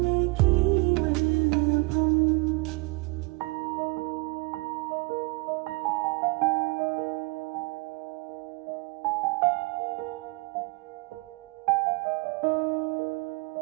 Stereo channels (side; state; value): left; quieter; 27.0 dB